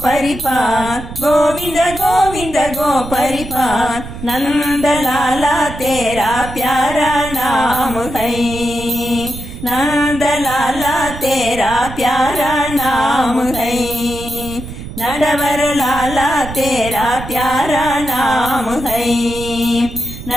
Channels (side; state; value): right; noise; rumble, 11 dB below the sound